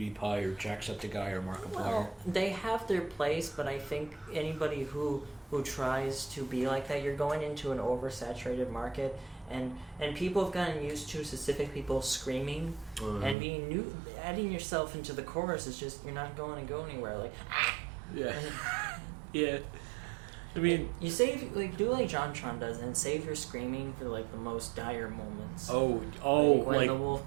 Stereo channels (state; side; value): drops out; left; at 13.4 s